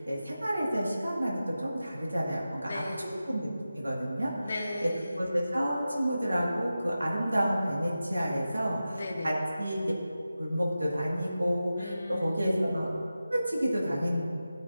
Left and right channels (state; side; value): inverted; both; correlation -0.93